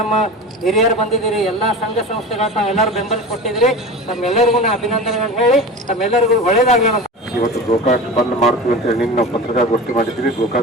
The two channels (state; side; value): normal; both; correlation 0.31